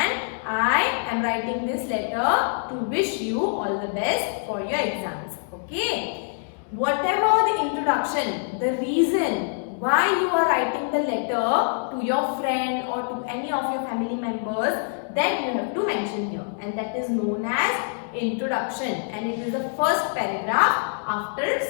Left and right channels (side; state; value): right; silent; digital silence